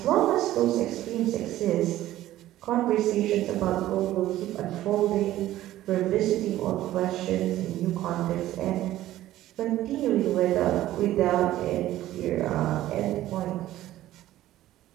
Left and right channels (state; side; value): quieter; left; 14.4 dB